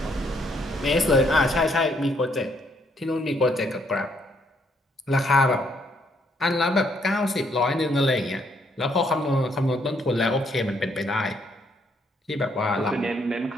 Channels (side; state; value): both; normal; correlation 0.71